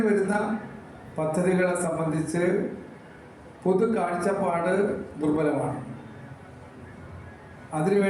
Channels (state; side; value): identical; both; correlation 1.00